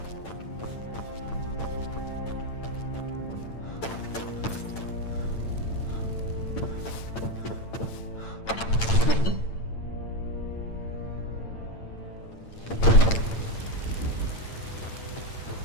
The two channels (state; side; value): late; right; 8.9 ms